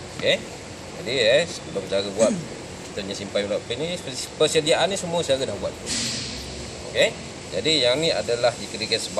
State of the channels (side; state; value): both; identical; correlation 1.00